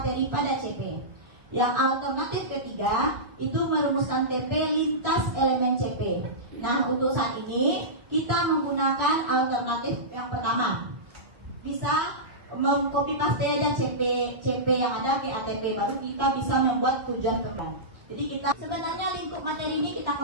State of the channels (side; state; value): left; late; 1.3 ms